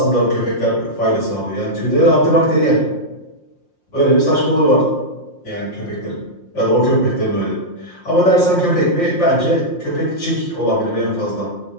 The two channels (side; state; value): right; late; 5.7 ms